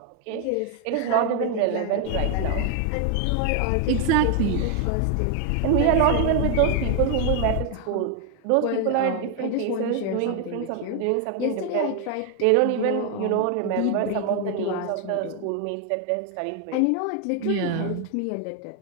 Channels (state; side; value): different; both; correlation 0.00